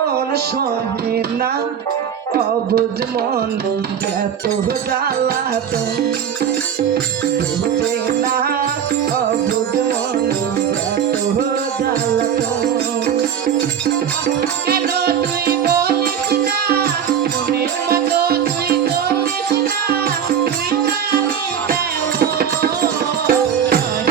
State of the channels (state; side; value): quieter; left; 8.4 dB